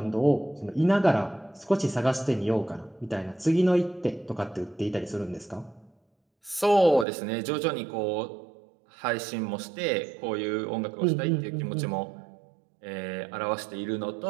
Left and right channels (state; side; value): drops out; left; at 7.1 s